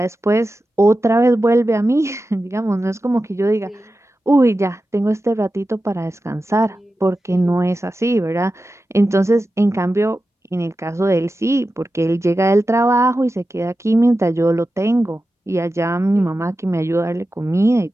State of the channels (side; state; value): both; normal; correlation 0.93